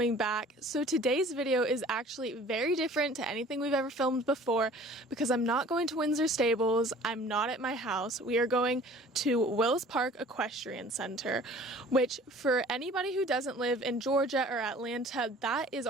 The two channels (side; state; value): both; normal; correlation 0.48